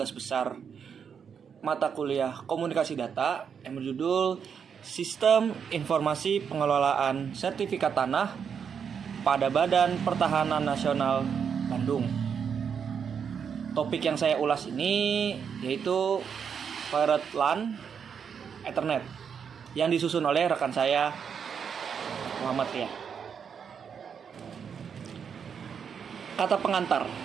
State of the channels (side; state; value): left; quieter; 7.0 dB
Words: besar mata kuliah Komunikasi Data yang berjudul Sistem Informasi Pengelolaan Sertifikat Tanah pada Badan Pertahanan Nasional Bandung. Topik yang saya ulas ini yaitu Pirate LAN Ethernet yang disusun oleh rekan saya Muhammad Ria. Kata pengantar.